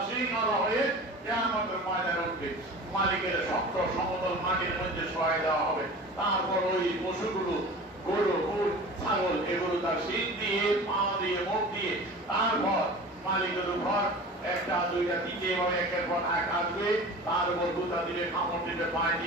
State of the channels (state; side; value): normal; both; correlation 0.37